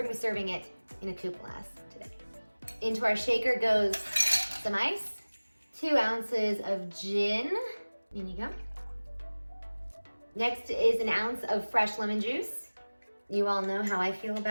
gonna be serving it in a coupe glass today. Into our shaker goes some ice, 2 ounces of gin, in you go. Next is an ounce of fresh lemon juice. You all know how I feel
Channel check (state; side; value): inverted; both; correlation -1.00